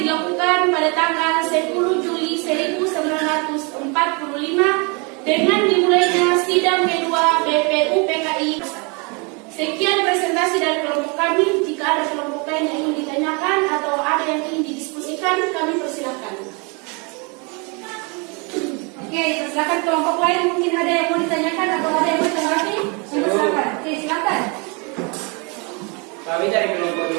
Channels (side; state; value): left; quieter; 31.8 dB